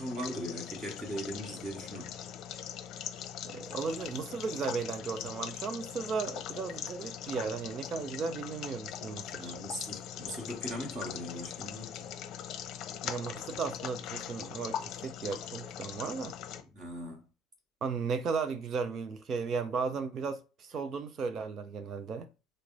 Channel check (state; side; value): normal; both; correlation 0.61